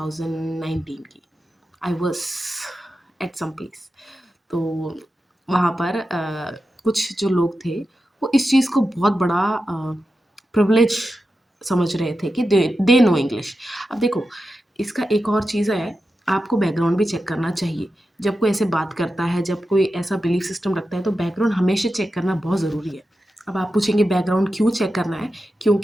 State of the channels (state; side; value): normal; both; correlation 0.91